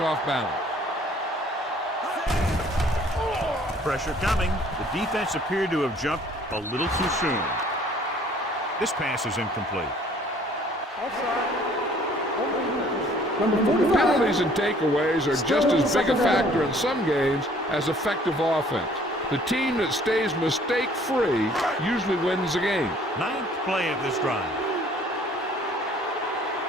off balance. Pressure coming. The defense appeared to have jumped a little too soon. This pass is incomplete. Penalties and takeaways are just as big a factor in some games as effective offense. The team that stays mistake-free usually wins the game. Ninth play of this drive.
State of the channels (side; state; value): both; normal; correlation 0.57